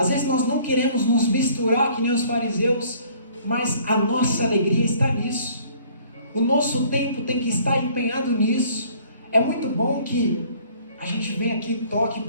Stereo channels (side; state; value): both; inverted; correlation -0.56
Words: vezes nós não queremos nos misturar que nem os fariseus, mas a nossa alegria está nisso. O nosso tempo tem que estar empenhado nisso. É muito bom que a gente venha aqui e toque